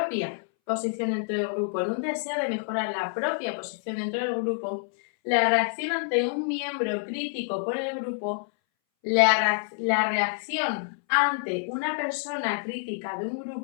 posición dentro del grupo, en un deseo de mejorar la propia posición dentro del grupo, la reacción ante un miembro crítico por el grupo, la reacción ante una persona crítica de un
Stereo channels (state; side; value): silent; right; 60 dB below the other